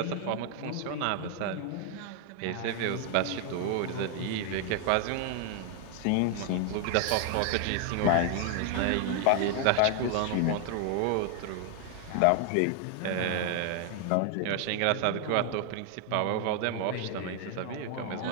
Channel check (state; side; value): different; both; correlation 0.00